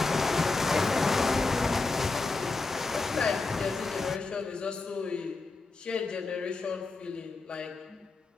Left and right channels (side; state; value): right; quieter; 3.7 dB